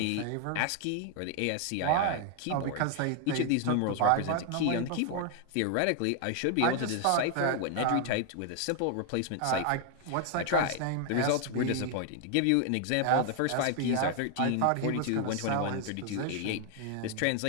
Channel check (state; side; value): different; both; correlation 0.00